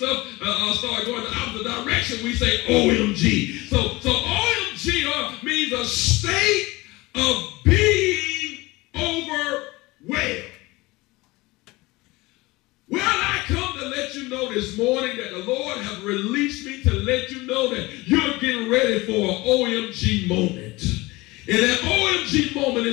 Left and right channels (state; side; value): quieter; right; 21.6 dB